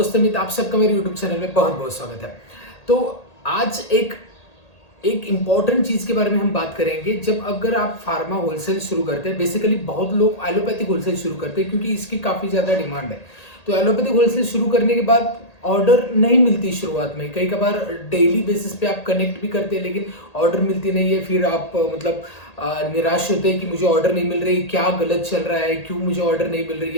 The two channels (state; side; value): late; right; 1.8 ms